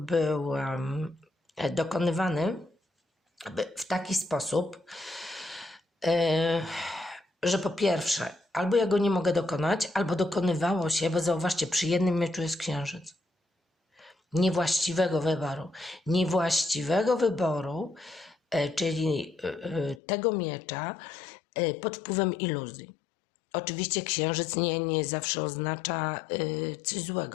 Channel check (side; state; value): right; drops out; at 20.0 s